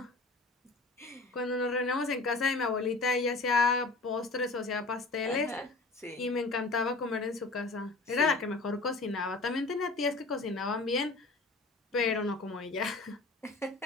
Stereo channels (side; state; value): right; quieter; 3.4 dB